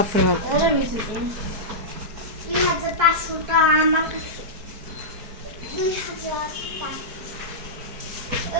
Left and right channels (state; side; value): late; left; 4.6 ms